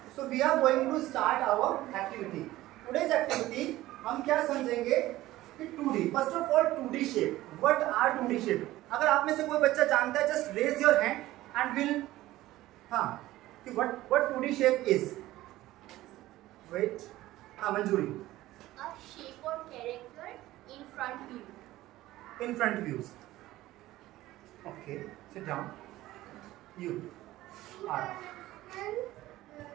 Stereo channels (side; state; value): left; quieter; 16.3 dB